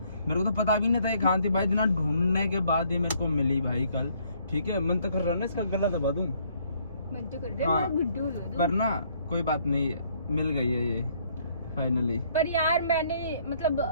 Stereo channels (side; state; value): both; inverted; correlation -0.66